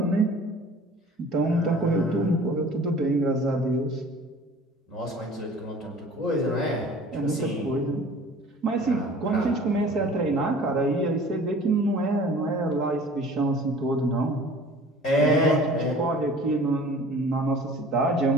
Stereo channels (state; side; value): normal; both; correlation 0.46